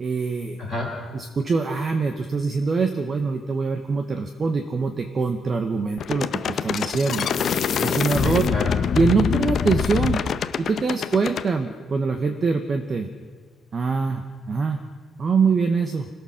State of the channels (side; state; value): both; normal; correlation 0.79